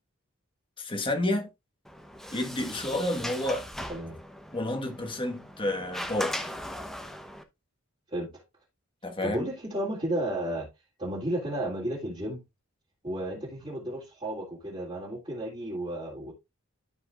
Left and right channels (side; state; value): both; normal; correlation 0.60